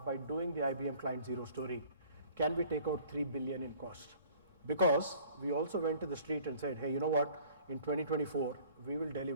by doing the IBM Client Zero story, can we take out 3 billion in cost? Because we also went to the street and said, hey, you know what, in 2024, we will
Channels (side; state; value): both; inverted; correlation -0.52